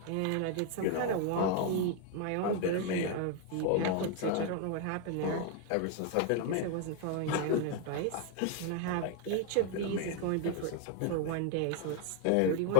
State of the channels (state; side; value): different; both; correlation 0.00